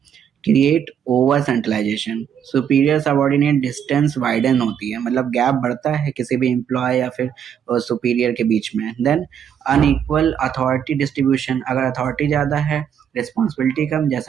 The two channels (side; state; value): left; quieter; 8.5 dB